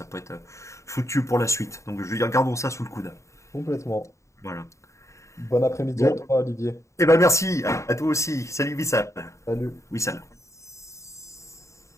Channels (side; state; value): right; late; 0.14 ms